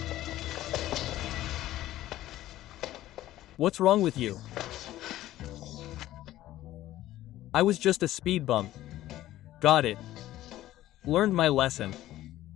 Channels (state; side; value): quieter; right; 14.5 dB